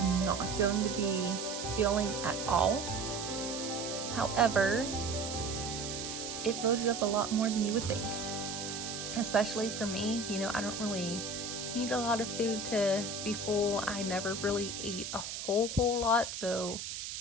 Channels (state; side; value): noise; right; hiss, 6 dB below the sound